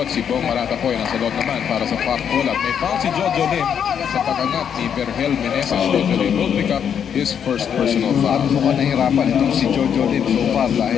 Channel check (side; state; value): right; quieter; 8.1 dB